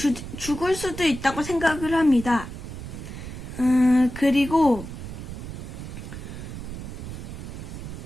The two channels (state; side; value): noise; right; rumble, 9 dB below the sound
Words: 있다고 생각을 합니다. 그리고